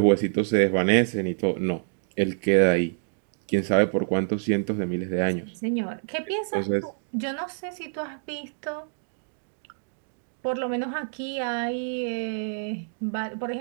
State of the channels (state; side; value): silent; left; digital silence